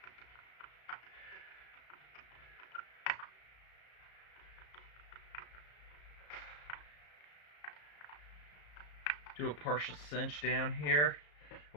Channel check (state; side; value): late; right; 34 ms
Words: Do a partial cinch down here.